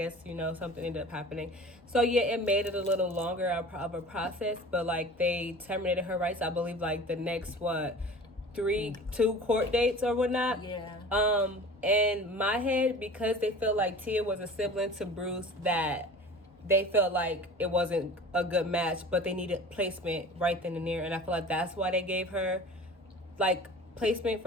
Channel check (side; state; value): both; normal; correlation 0.40